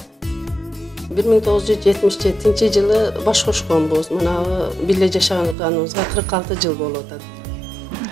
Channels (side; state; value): left; drops out; at 5.6 s